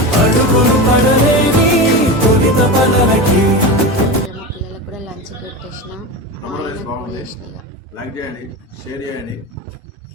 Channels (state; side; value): normal; both; correlation 0.23